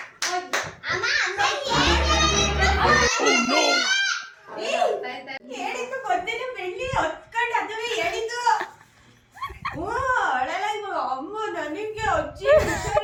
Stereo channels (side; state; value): both; identical; correlation 1.00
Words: ಹೇಳಿದ್ದು ಗೊತ್ತಿಲ್ಲ, ಬೆಳ್ಳಿ ಹೊತ್ಕೊಂಡು ಅದುವೇ ಹೇಳಿದ್ದು. ಅಮ್ಮ ನನಗೆ ಅಜ್ಜಿ